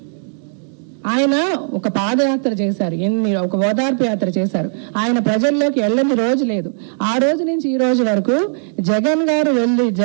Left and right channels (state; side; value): silent; left; digital silence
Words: ఆయన ఒక పాదయాత్ర చేశారు, ఒక ఓదార్పు యాత్ర చేశారు. ఆయన ప్రజల్లోకి వెళ్ళని రోజు లేదు. ఆ రోజు నుంచి ఈ రోజు వరకు జగన్